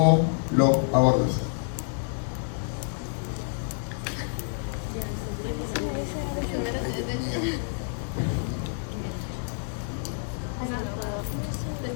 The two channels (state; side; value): silent; right; 59 dB below the other